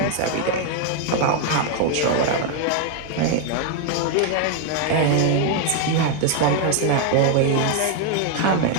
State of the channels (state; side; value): different; both; correlation 0.01